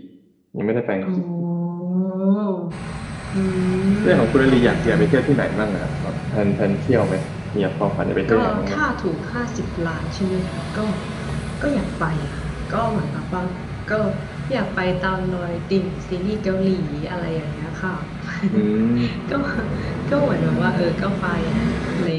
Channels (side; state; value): both; identical; correlation 1.00